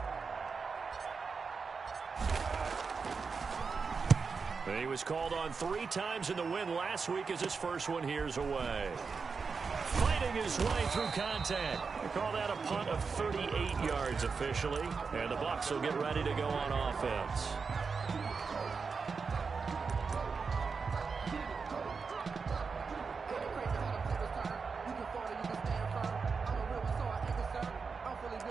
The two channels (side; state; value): left; quieter; 5.1 dB